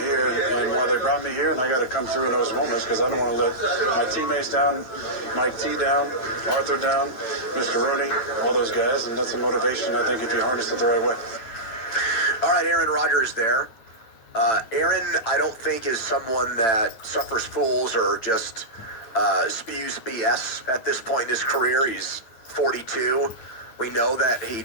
and why they brought me here, and I got to come through in those moments because I don't want to let my teammates down, Mike T down, Arthur down, Mr. Rooney, all those guys, and that's a motivation, I think, if you harness it the right way. All right, Aaron Rodgers there. Aaron, I don't think is someone that suffers fools or just spews BS at this point in his career. He's 42. We know that he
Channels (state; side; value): late; right; 9.0 ms